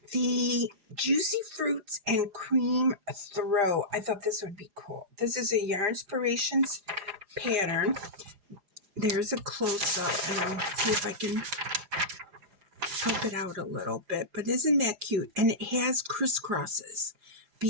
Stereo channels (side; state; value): left; late; 4.9 ms